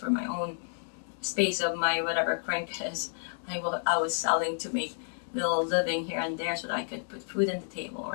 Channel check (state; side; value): silent; right; digital silence